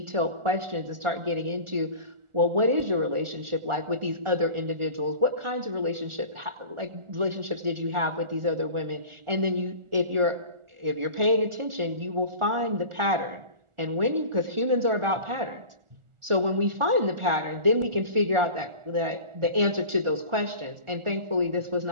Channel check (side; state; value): left; late; 1.4 ms